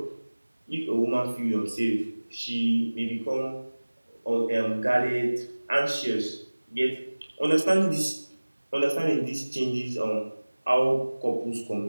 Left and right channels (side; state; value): both; inverted; correlation -1.00